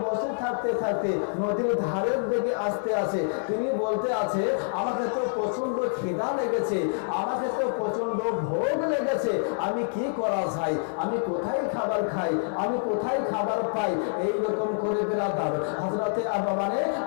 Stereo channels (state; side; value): silent; right; 57 dB below the other